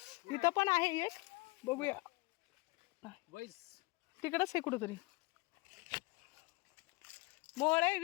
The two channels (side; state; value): right; quieter; 23.7 dB